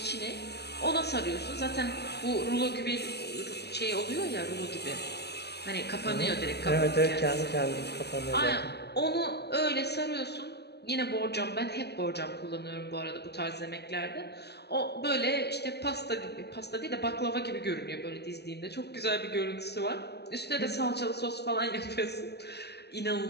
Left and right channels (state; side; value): late; right; 0.48 ms